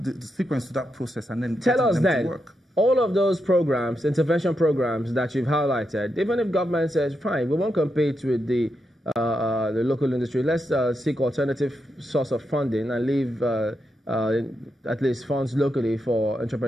sequence to that process, and then tell us them then. to work. All of those programs, intervention programs that you've highlighted, even if government says, fine, we won't compete with the local industry, let's seek alternative source of funding and leave at least funds locally for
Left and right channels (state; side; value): normal; both; correlation 0.85